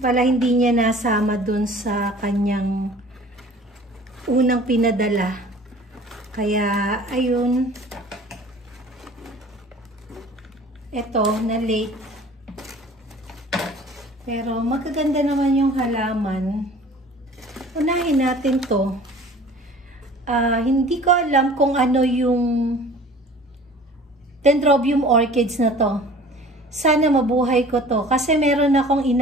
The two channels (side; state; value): both; normal; correlation 0.46